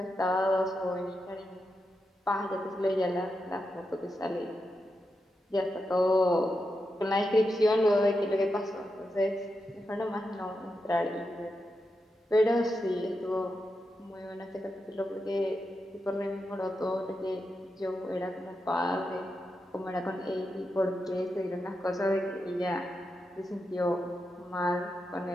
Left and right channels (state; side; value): normal; both; correlation 0.87